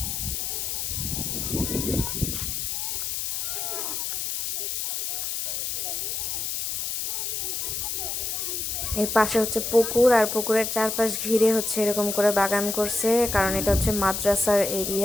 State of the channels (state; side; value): noise; left; hiss, 2 dB below the sound